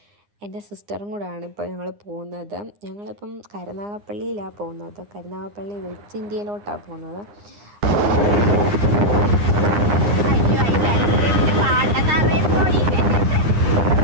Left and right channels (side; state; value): left; late; 9.8 ms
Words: എൻ്റെ സിസ്റ്ററും കൂടെയാണ് ഇപ്പോൾ ഞങ്ങൾ പോകുന്നത്. ഞങ്ങളിപ്പം കരുനാഗപ്പള്ളിയിലാണ് പോകുന്നത്. കരുനാഗപ്പള്ളി വെസ്റ്റ് ഇന്ത്യയിലോട്ടാണ് പോകുന്നത്.